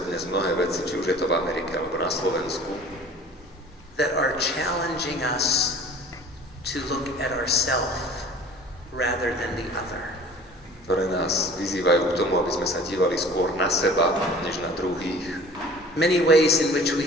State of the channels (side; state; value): both; normal; correlation 0.46